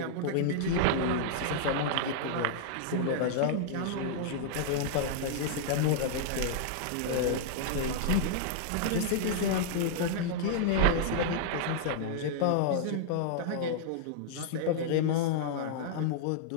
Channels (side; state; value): both; different; correlation -0.01